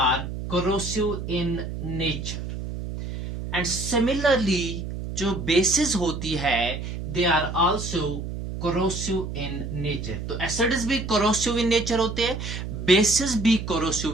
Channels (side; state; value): right; noise; hum, 6 dB below the sound